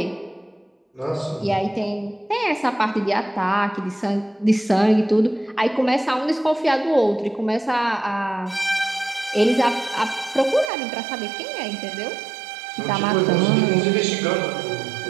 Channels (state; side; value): drops out; left; at 10.7 s